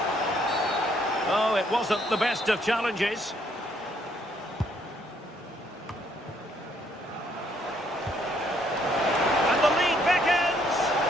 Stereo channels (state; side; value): normal; both; correlation 0.68